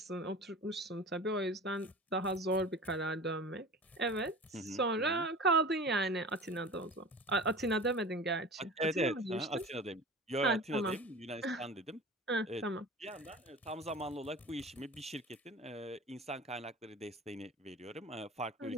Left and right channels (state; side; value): normal; both; correlation 0.37